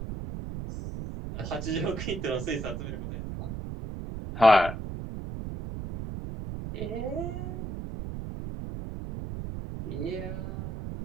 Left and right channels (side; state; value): right; noise; rumble, 6 dB below the sound